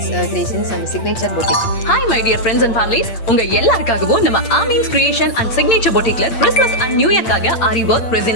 Creations and Signature Boutique. Hi my dear friends and families. உங்க எல்லாருக்காகவும் நம்ம Amin's Creation and Signature Boutiqueல Christmas and New Year காக Ari work, resin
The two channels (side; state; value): right; late; 8.5 ms